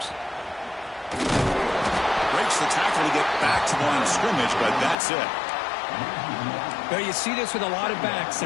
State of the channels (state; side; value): drops out; right; at 5.0 s